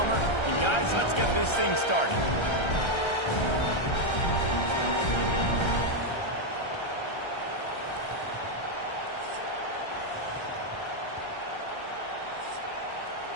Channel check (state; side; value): late; right; 1.3 ms